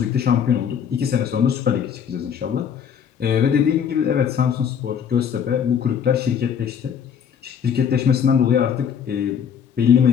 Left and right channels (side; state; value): right; quieter; 7.8 dB